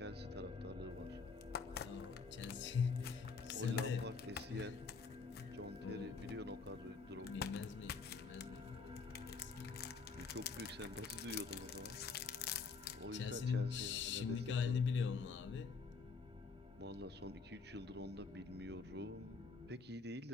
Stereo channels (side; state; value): right; quieter; 4.9 dB